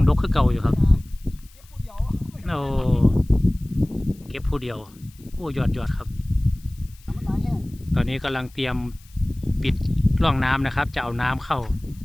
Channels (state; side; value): noise; left; hiss, 27 dB below the sound